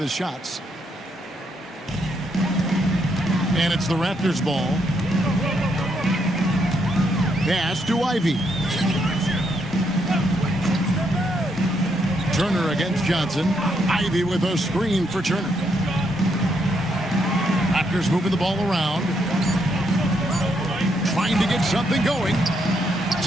his shots. And it's the Raptors ball. Pass to Ivy. Turner against Johnson. Ivy with a screen for Turner. Raptors moving the ball around. Trying to get something going.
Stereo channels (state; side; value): normal; both; correlation 0.76